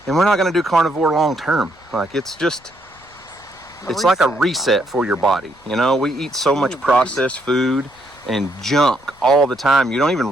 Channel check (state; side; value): noise; left; rumble, 28 dB below the sound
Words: and we're not going to do carnivore long term. Like it's like a reset for your body. You know, we eat so much processed food and junk all the time. You don't